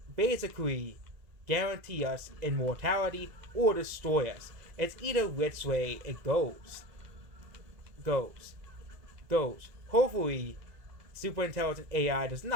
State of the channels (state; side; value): late; left; 2.0 ms